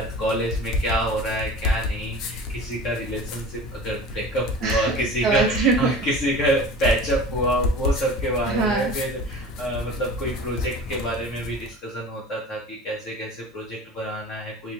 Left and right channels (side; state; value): both; normal; correlation 0.38